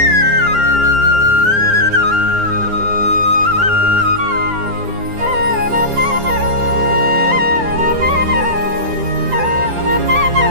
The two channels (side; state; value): left; late; 10 ms